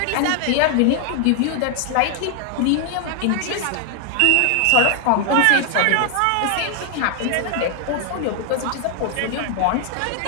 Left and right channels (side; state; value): both; different; correlation 0.00